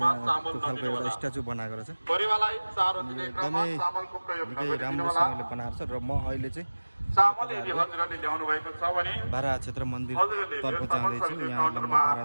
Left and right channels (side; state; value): both; inverted; correlation -1.00